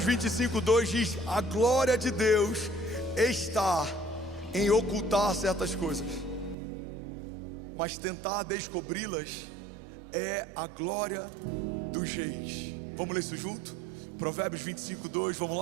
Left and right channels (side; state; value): left; drops out; at 6.6 s